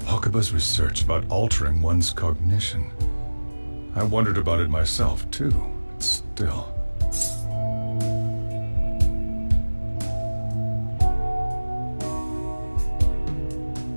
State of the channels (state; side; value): inverted; both; correlation -1.00